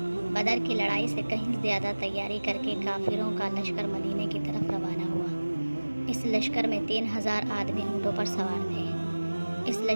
बदर की लड़ाई से कहीं ज़्यादा तैयारी करके काफिरों का लश्कर मदीने की तरफ रवाना हुआ। इस लश्कर में 3000 आदमी ऊँटों पर सवार थे। इस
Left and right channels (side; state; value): both; inverted; correlation -1.00